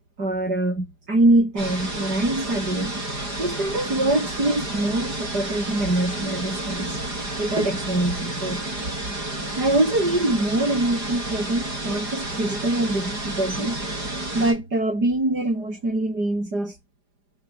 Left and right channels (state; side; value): late; left; 4.9 ms